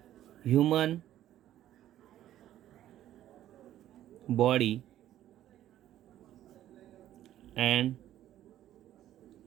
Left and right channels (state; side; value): quieter; left; 12.6 dB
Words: Human Body and